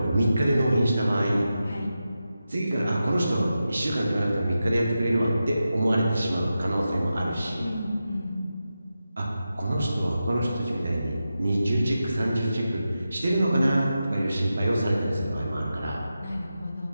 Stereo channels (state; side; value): inverted; both; correlation -0.91